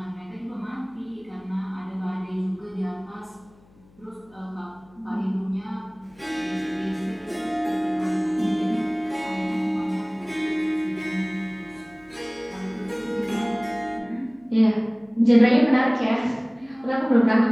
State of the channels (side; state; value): left; noise; hum, 29 dB below the sound